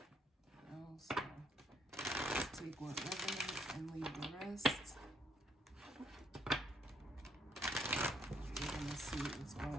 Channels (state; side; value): normal; both; correlation 0.69